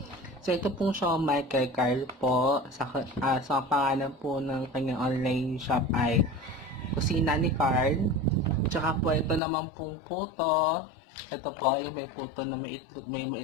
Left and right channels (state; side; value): drops out; right; at 9.4 s